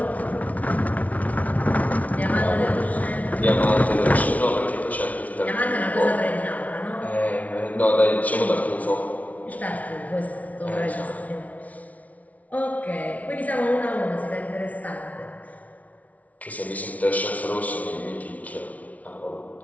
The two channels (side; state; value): right; late; 0.070 ms